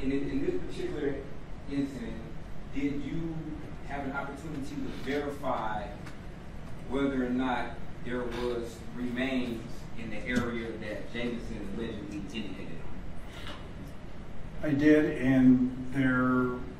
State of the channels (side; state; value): both; identical; correlation 1.00